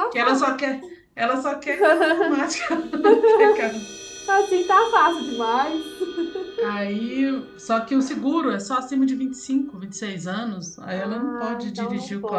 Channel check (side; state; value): both; identical; correlation 1.00